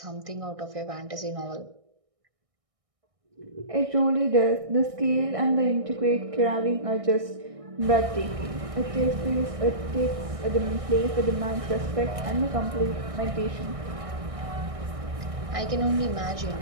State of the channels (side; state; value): left; late; 1.6 ms